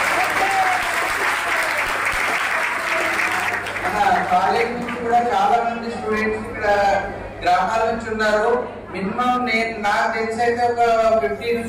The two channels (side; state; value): both; identical; correlation 1.00